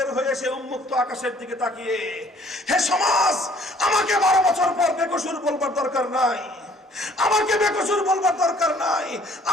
হয়ে সে উন্মুক্ত আকাশের দিকে তাকিয়ে, হে সমাজ, আমাকে 12 বছর পর বেকসুর বলবার দরকার নাই, আমাকে বেকসুর বলবার দরকার নাই।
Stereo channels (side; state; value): both; normal; correlation 0.58